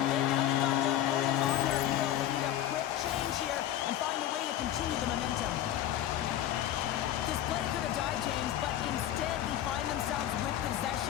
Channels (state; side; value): quieter; right; 12.2 dB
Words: bit. Now they've got their opponent on their heels. They need a quick change here and find a way to continue the momentum. This play could have died, James, but instead they find themselves with